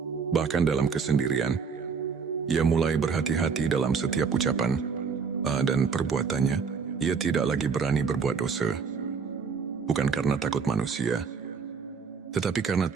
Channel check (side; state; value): left; quieter; 5.7 dB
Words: Bahkan dalam kesendirian, ia mulai berhati-hati dalam setiap ucapan dan perbuatannya. Ia tidak lagi berani berbuat dosa. Bukan karena takut manusia, tetapi karena